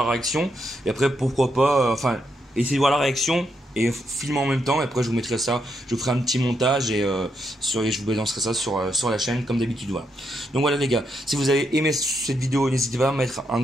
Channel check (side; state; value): both; normal; correlation 0.80